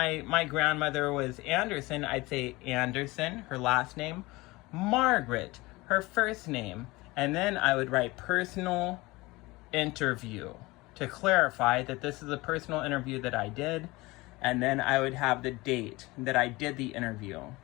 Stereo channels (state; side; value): quieter; right; 21.7 dB